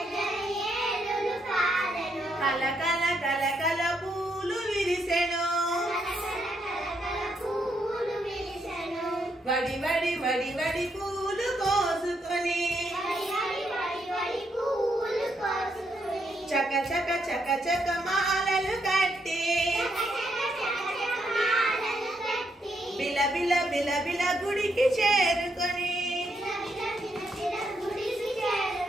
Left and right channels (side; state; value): both; normal; correlation 0.77